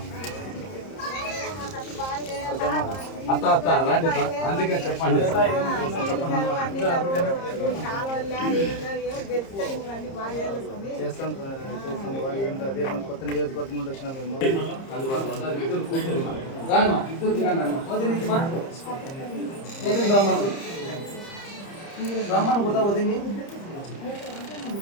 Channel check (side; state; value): right; late; 30 ms